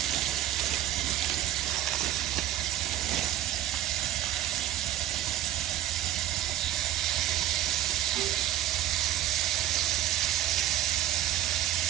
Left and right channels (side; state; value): left; quieter; 12.4 dB